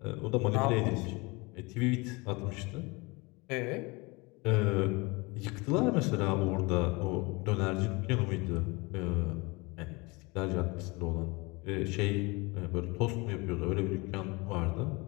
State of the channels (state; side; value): quieter; right; 25.9 dB